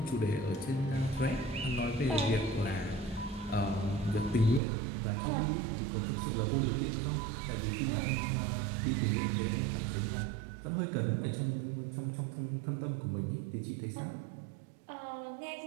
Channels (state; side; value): drops out; left; at 4.6 s